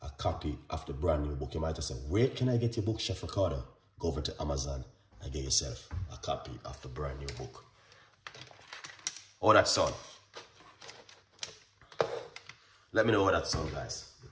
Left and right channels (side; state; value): both; identical; correlation 1.00